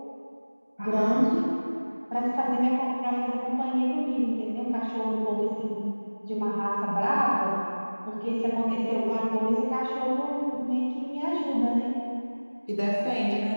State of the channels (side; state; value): both; inverted; correlation -1.00